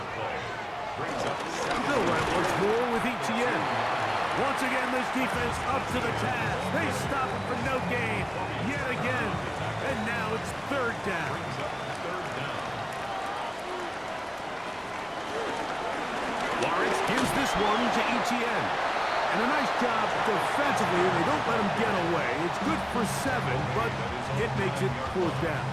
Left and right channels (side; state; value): both; identical; correlation 1.00